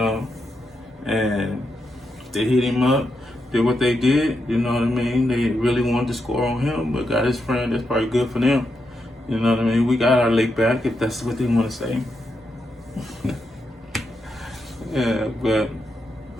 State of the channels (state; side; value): normal; both; correlation 0.84